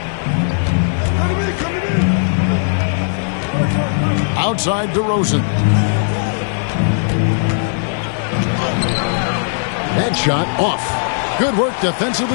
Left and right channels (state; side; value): silent; right; 65 dB below the other